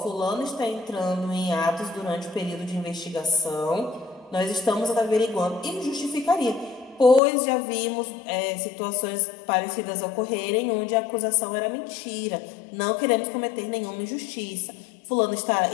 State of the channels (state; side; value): drops out; right; at 7.2 s